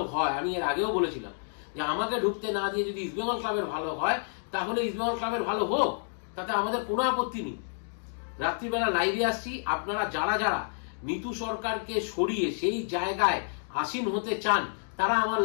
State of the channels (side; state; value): right; silent; digital silence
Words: হয়, আমি এর আগেও বলেছিলাম যে আমাকে ঢুকতে না দিয়ে যদি ইস্ট বেঙ্গল ক্লাবের ভালো হয় তাহলে ইস্ট বেঙ্গল ক্লাবের ভালো হোক, তাতে আমাদের কোনো আপত্তি নেই। রাত্রিবেলা লাইভে আসছি, আপনারা যারা যারা নীতু সরকারকে সরিয়ে সেই জায়গায় আসীন হতে চান তারা আমার